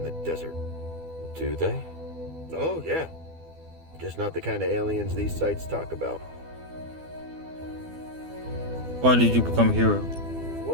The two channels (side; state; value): left; late; 12 ms